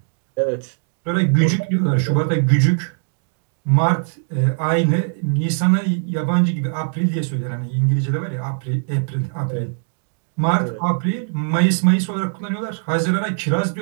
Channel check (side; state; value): left; silent; digital silence